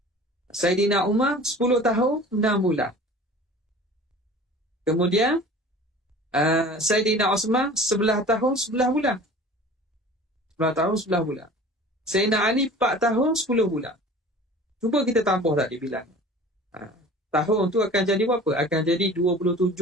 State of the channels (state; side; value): normal; both; correlation 0.43